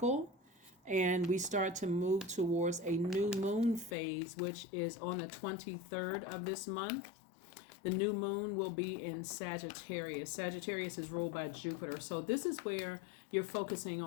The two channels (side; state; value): right; drops out; at 4.0 s